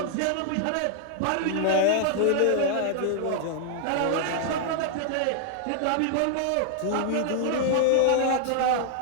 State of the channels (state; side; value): different; both; correlation -0.01